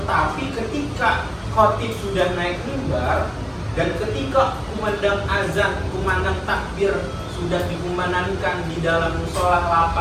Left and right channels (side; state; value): both; identical; correlation 1.00